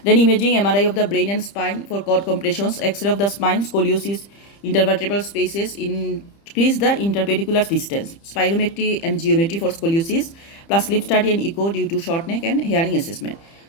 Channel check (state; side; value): late; right; 30 ms